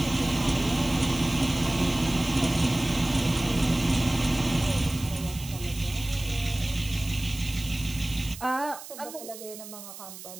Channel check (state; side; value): noise; right; hiss, 13 dB below the sound